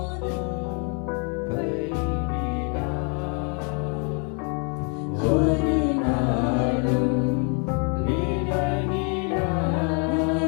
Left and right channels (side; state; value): right; quieter; 37.8 dB